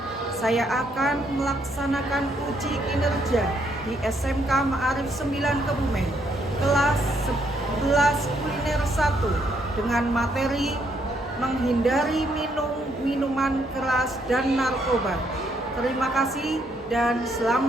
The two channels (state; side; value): normal; both; correlation 0.73